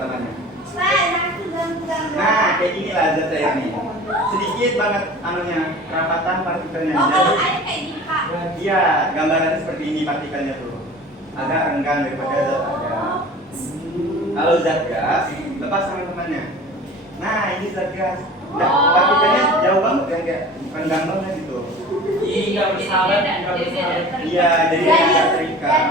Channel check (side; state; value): both; normal; correlation 0.41